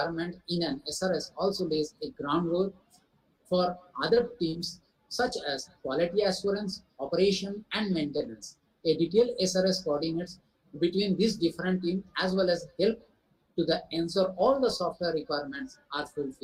in an SRS also lays a groundwork for other teams such as quality assurance, operation, and maintenance. A detailed SRS coordinates between these different teams as well as help to ensure all the software requirements are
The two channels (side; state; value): both; identical; correlation 1.00